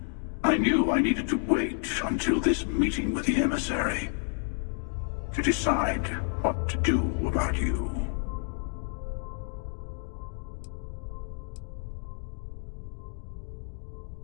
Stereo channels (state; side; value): silent; right; 58 dB below the other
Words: I knew I needed to wait until this meeting with the emissary to decide what to do about you.